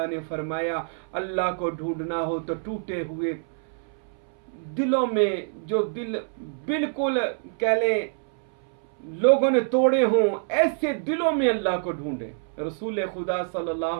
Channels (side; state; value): left; silent; 61 dB below the other